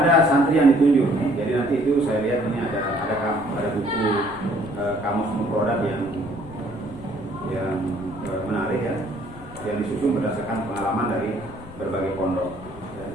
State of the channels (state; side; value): noise; left; rumble, 17 dB below the sound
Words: santri yang ditunjuk. Jadi nanti nanti itu saya lihat ini ada buku kamus mufradat yang menarik ya, yang disusun berdasarkan pengalaman dari berbagai pondok.